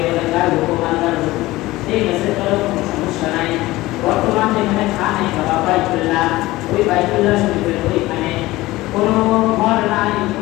বলে তার হুকুম আল্লাহর হুকুম, ঠিক আছে, চলো, কোনো সমস্যা নাই। বর্তমান যেখানে খানে বাবা বাইতুল্লাহ, ওই বাইতুল্লাহ শরীফের ওইখানে কোনো ঘর নাই,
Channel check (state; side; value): quieter; right; 18.5 dB